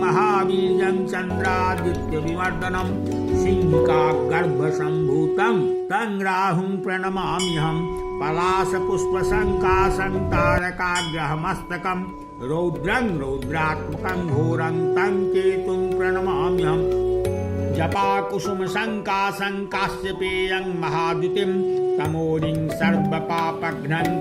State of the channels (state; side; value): identical; both; correlation 1.00